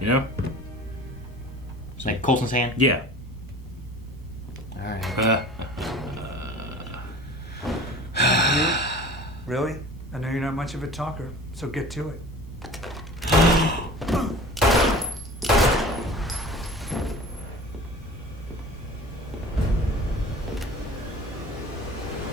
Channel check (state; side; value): normal; both; correlation 0.42